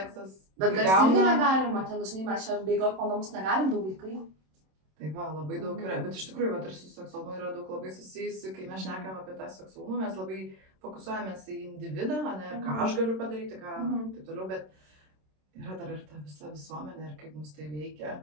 Bet garsiai irgi negalima, ten dažnai mes čia bėgiot po namus negalim, 2 vaikai. Tai va, labai daug yra, bet iš tikrųjų, ir su seksualumu yra daug labai susijusi, kai mes šnekam apie tą seksualumą, mes labai fokusuojamės į individą, ir ką aš galiu padaryti, ką taip toliau, bet yra dar ir ta visa visuomenė ir kaip mus tai veikia,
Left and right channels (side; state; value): left; late; 27 ms